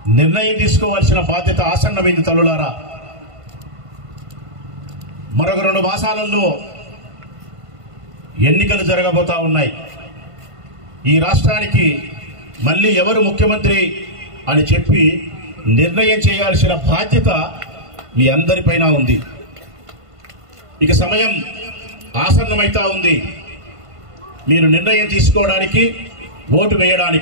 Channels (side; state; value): left; late; 1.5 ms